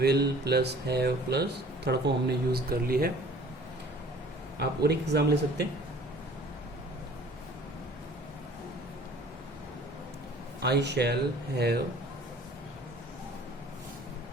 plus have plus third form हमने यूज कर ली है। आप और एक एग्जाम ले सकते हैं। I shall have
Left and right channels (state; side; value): normal; both; correlation 0.50